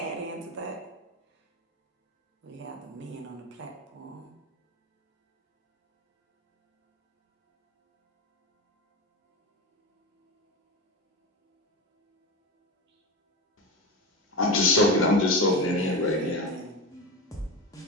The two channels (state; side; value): normal; both; correlation 0.22